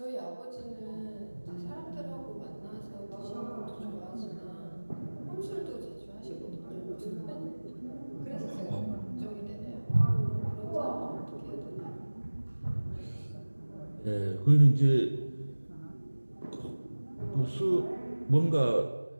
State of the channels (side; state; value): both; inverted; correlation -1.00